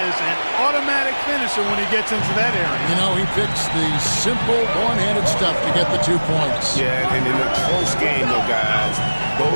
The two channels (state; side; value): inverted; both; correlation -1.00